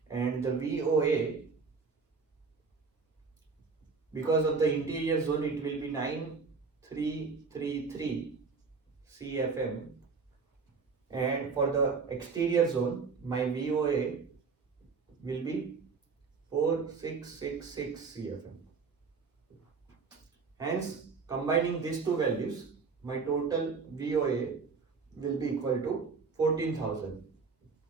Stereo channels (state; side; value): quieter; left; 4.9 dB